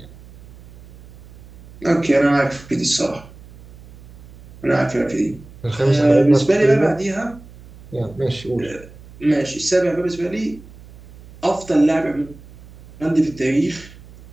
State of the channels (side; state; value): right; noise; hum, 21 dB below the sound